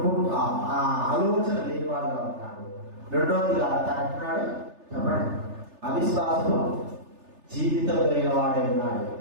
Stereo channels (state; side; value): late; left; 3.3 ms